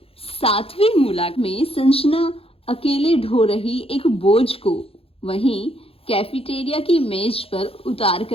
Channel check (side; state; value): right; late; 0.27 ms